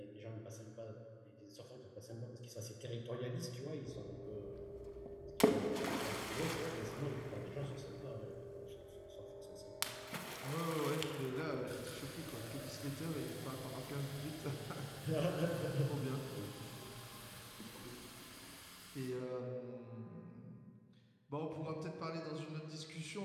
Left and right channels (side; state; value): both; identical; correlation 1.00